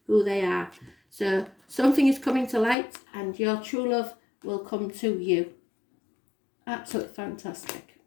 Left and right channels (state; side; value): drops out; right; at 2.8 s